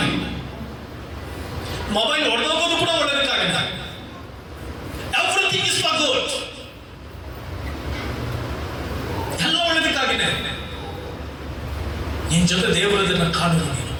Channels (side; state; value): both; identical; correlation 1.00